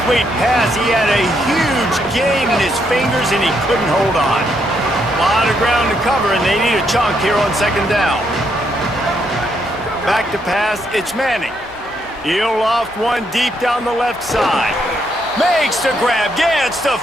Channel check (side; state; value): both; normal; correlation 0.76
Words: pass. He had a huge gain in his fingers, and he couldn't hold on. A lot of ground to cover, and they need a chunk here on 2nd down. Back to pass. It's Manning. He'll loft one deep down the left side. Makes the grab. Gets the